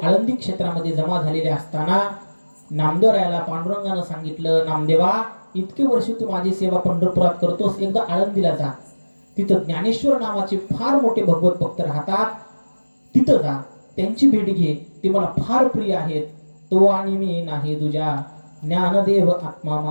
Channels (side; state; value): both; inverted; correlation -1.00